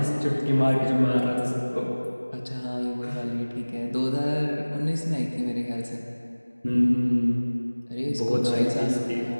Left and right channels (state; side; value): inverted; both; correlation -1.00